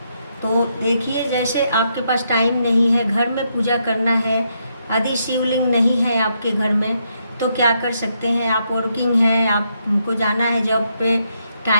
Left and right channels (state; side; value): inverted; both; correlation -0.78